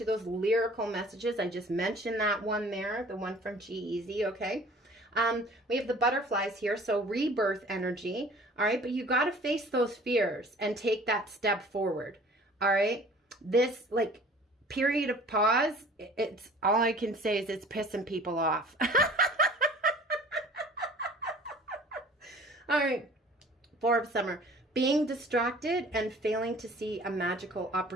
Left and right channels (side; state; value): both; normal; correlation 0.48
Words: those lyrical messages. I just mentioned that one there, the one from G-Eazy. Okay, we have the butterflies here, so rebirth energy. All right, but you got to face those fears and take that step forward. All right, this like period of pause. It's all I can say is it's pissing people off. All right. 4 of Summer, being distracted and failing to see a magical